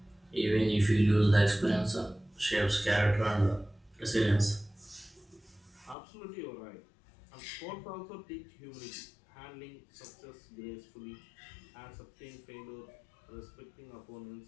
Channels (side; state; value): right; drops out; at 6.0 s